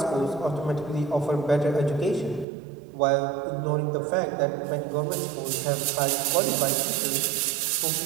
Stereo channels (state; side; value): drops out; left; at 2.5 s